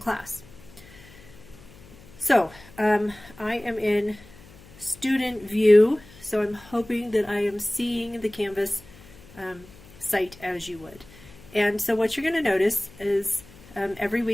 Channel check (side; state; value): left; noise; hum, 22 dB below the sound